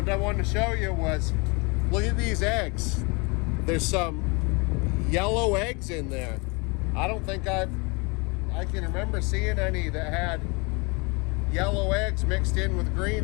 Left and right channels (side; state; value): right; quieter; 29.6 dB